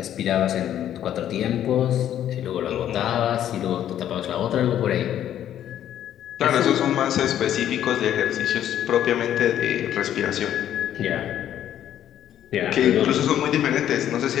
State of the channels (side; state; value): right; quieter; 10.9 dB